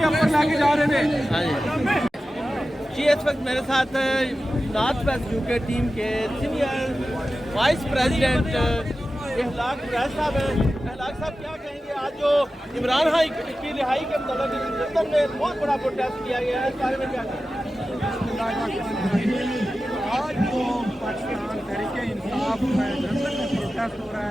ऊपर लाके जा रहे थे। हाँ जी, इस वक्त मेरे साथ नॉर्थ वेस्ट यूके टीम के सीनियर वाइस प्रेसिडेंट इखलाक कुरैश साहब हैं। इखलाक साहब क्या कहेंगे, आज जो इमरान खान की रिहाई के मतलब लंदन में बहुत बड़ा प्रोटेस्ट किया गया है, इस बारे में क्या कहेंगे? आज जो पाकिस्तान तहरीक इंसाफ में लंदन में प्रोटेस्ट हो रहा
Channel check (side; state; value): both; normal; correlation 0.94